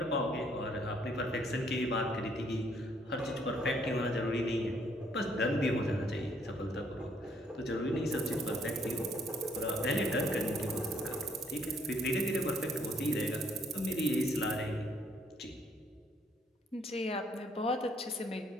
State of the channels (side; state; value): both; normal; correlation 0.67